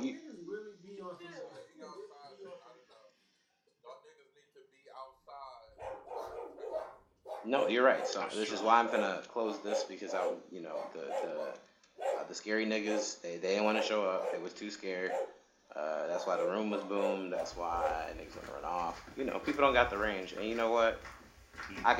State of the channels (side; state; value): both; identical; correlation 1.00